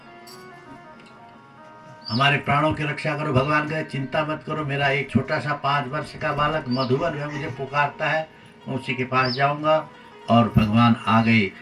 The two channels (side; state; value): both; identical; correlation 1.00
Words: हमारे प्राणों की रक्षा करो। भगवान कहे चिंता मत करो, मेरा एक छोटा सा 5 वर्ष का बालक मधुबन है, मुझे पुकारता है, मैं उसी के पास जाऊंगा। और भगवान आ गए।